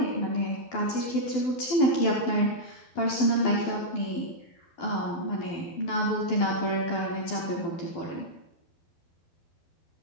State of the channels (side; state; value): right; late; 12 ms